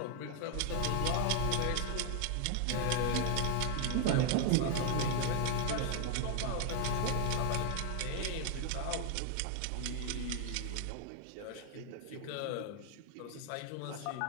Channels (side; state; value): both; different; correlation 0.00